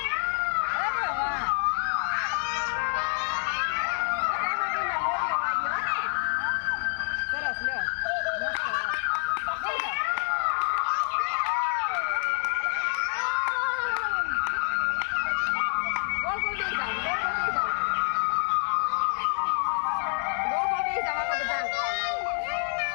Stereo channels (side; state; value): right; silent; 60 dB below the other